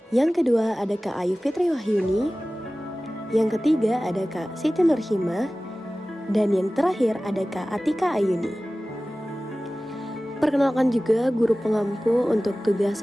yang kedua ada Kak Ayu Fitri Wahyuni, yang ketiga ada Kak Siti Nurhimah, dan yang terakhir ada Kak Atika Ayuni. Perkenalkan juga guru pengampu untuk tugas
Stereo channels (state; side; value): normal; both; correlation 0.97